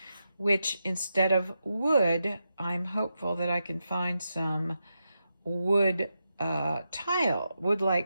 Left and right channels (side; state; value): both; inverted; correlation -0.87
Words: which instead of wood, I'm hopeful that I can find some wood tile,